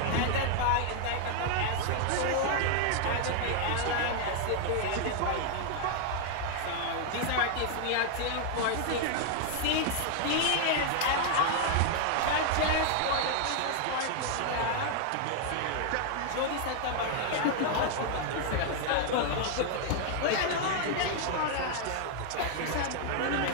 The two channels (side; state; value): both; different; correlation 0.00